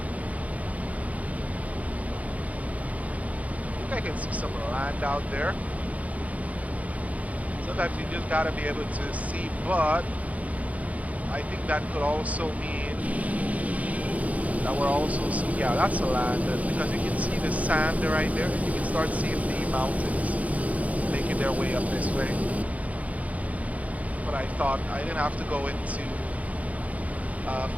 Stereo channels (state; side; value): late; left; 0.069 ms